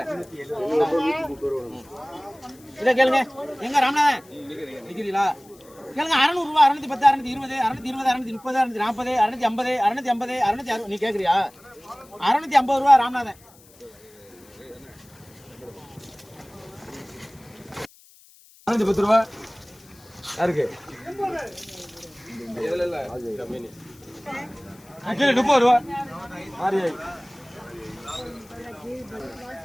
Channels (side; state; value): left; noise; hiss, 26 dB below the sound